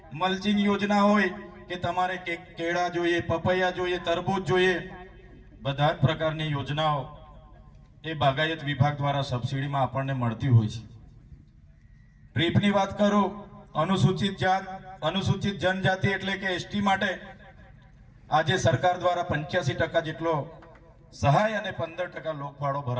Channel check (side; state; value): both; identical; correlation 1.00